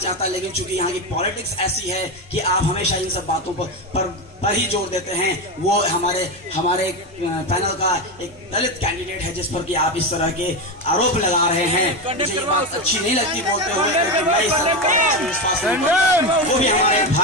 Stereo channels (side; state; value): both; normal; correlation 0.15